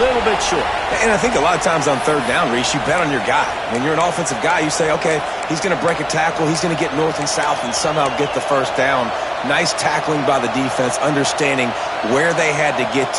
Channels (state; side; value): identical; both; correlation 1.00